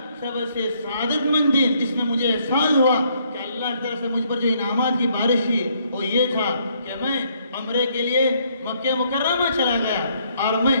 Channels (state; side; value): inverted; both; correlation -0.69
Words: سب سے سعادت مند دن جس میں مجھے احساس ہوا کہ اللہ کی طرف سے مجھ پر جو انعامات کی بارش ہوئی وہ یہ تھا کہ میں عمرے کے لیے مکہ مکرمہ چلا گیا، اور میں